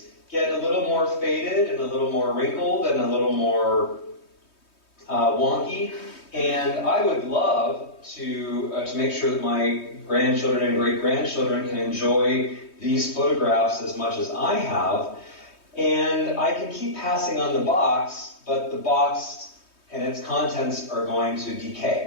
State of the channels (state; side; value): late; right; 3.2 ms